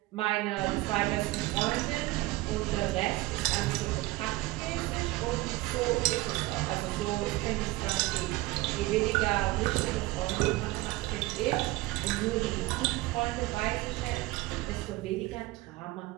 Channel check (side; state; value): left; quieter; 19.7 dB